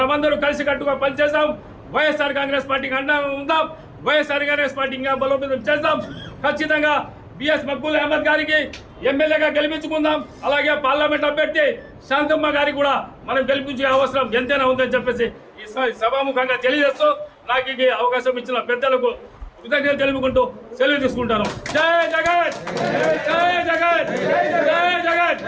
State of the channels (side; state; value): both; identical; correlation 1.00